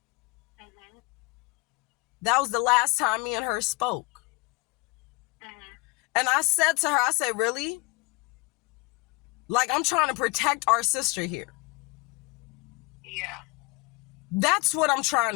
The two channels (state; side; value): quieter; right; 27.3 dB